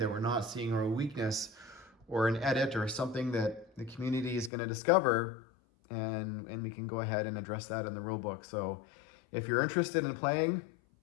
we're not seeing, or a weakness or an edit or something that the community is going to discover, and we can go ahead and address that in the rulebook. So if you're interested in playing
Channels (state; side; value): drops out; right; at 4.5 s